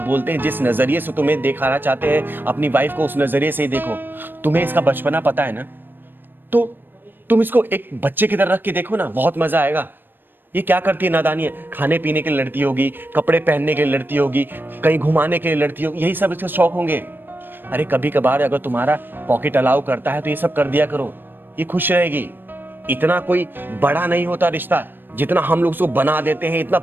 बोलते हैं, जिस नजरिए से तुम्हें दिखाना चाहते हैं अपनी वाइफ को, उस नजरिए से ही देखो। तुम्हें इसका बचपना पता है ना, तो तुम इसको एक बच्चे की तरह रख के देखो ना, बहुत मजा आएगा। ये क्या करती है नादानी है, खाने पीने के लिए लड़ती होगी, कपड़े पहनने के लिए लड़ती होगी, कहीं घुमाने के लिए लड़ती होगी, यही सब इसके शौक होंगे। अरे कभी कभार अगर तुम्हारा पॉकेट अलाउ करता है तो ये सब कर दिया करो, ये खुश रहेगी। इतना कोई बड़ा नहीं होता रिश्ता जितना हम लोग उसको बना देते हैं, इतना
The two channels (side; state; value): left; late; 0.095 ms